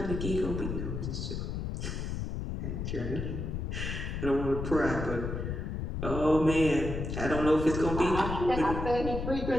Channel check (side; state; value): left; noise; rumble, 4 dB below the sound